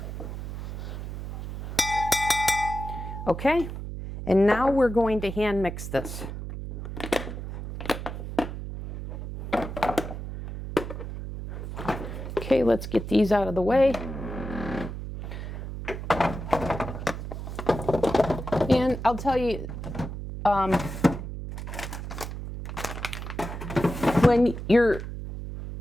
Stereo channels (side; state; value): right; noise; hum, 7 dB below the sound